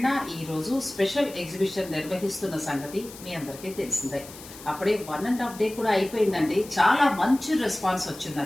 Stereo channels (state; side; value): noise; left; hiss, 17 dB below the sound